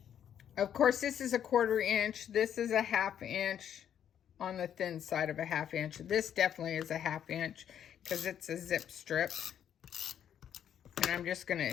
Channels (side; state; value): right; quieter; 9.5 dB